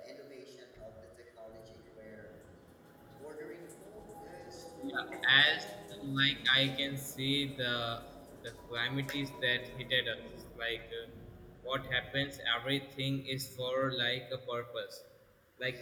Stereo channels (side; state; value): both; identical; correlation 1.00